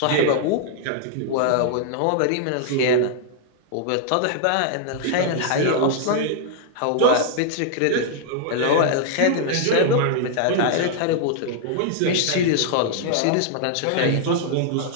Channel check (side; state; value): both; different; correlation -0.01